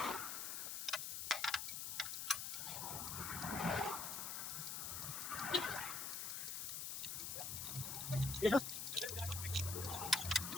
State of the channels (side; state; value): left; noise; hiss, 3 dB below the sound